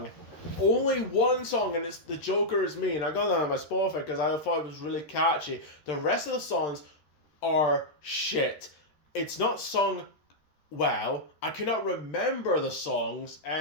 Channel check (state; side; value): late; right; 13 ms